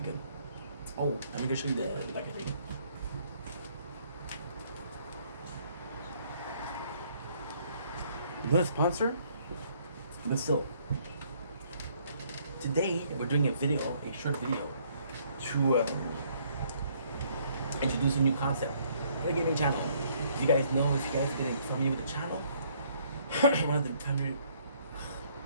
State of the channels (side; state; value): both; inverted; correlation -0.64